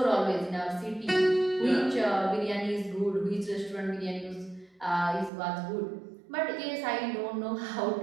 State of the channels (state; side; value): drops out; left; at 5.3 s